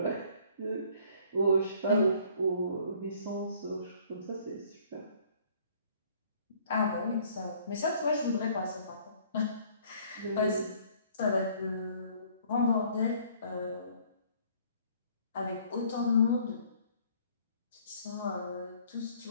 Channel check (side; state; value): both; inverted; correlation -0.58